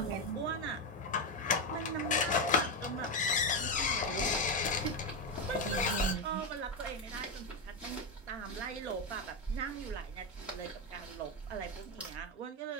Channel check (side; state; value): both; normal; correlation 0.09